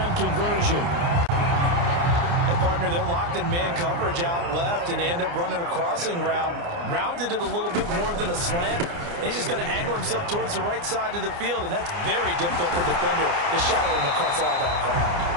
conversion. Partner, they're locked in man coverage out left and end up running a crossing route. Rounded it a little bit more than a slant. And he's just going to angle himself towards the right side of the field, and that's very difficult for a defender to shadow him across all that ground.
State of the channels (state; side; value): late; left; 29 ms